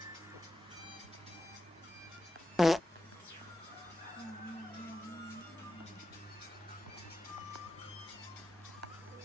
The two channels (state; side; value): normal; both; correlation 0.90